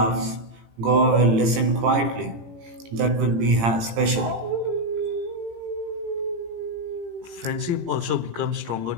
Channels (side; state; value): left; late; 18 ms